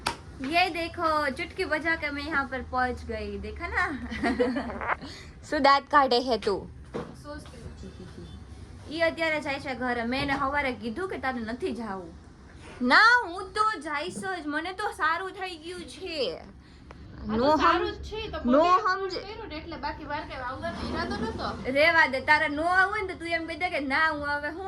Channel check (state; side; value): identical; both; correlation 1.00